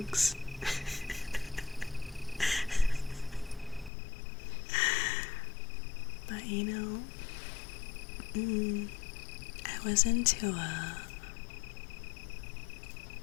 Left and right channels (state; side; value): drops out; right; at 3.9 s